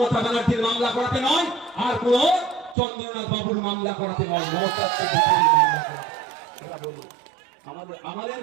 ব্যানার্জির মামলা করাতে নয়, আর কোন চন্দ্রনাথ বাবুর মামলা করাতে নয়, মমতা এটা বলুন।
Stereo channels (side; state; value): left; drops out; at 2.8 s